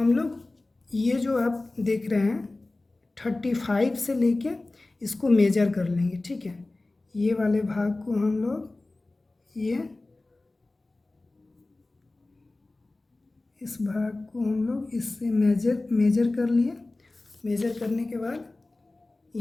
लोग ये जो आप देख रहे हैं 35 से लेके इसको मेजर कर लेंगे। ठीक है, ये वाले भाग को हम लोग इस भाग को हम लोग इससे मेजर कर लिए। मेजर करने के बाद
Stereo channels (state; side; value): quieter; right; 3.0 dB